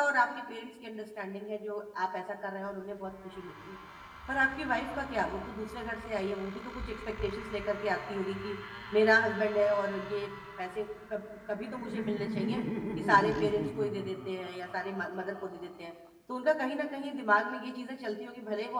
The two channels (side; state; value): both; identical; correlation 1.00